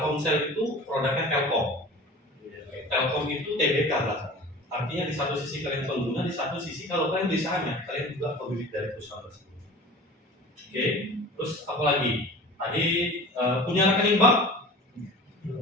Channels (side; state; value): both; normal; correlation 0.39